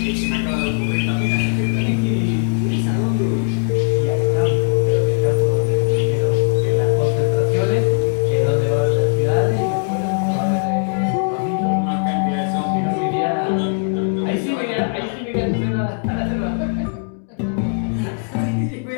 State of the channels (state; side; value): silent; right; digital silence